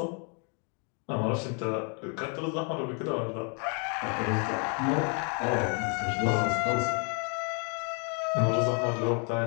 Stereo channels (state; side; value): quieter; right; 38.9 dB